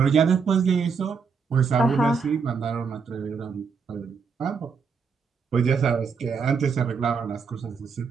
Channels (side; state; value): left; quieter; 5.7 dB